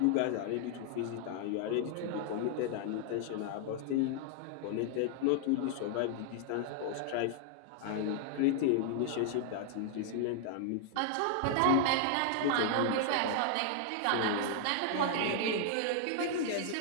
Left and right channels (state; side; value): different; both; correlation 0.00